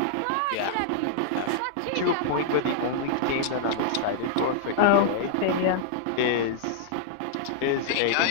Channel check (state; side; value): different; both; correlation -0.01